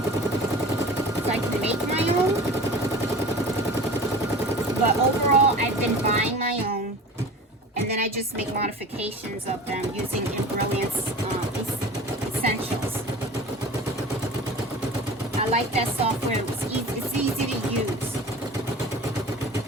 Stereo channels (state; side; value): normal; both; correlation 0.39